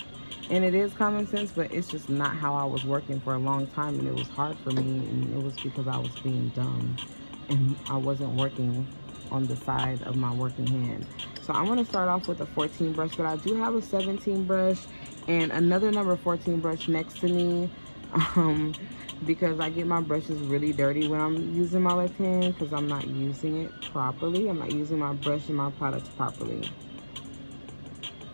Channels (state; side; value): inverted; both; correlation -1.00